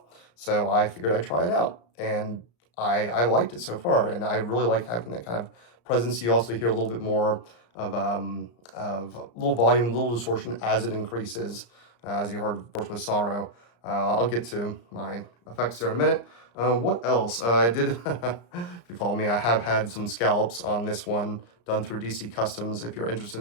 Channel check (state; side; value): late; right; 34 ms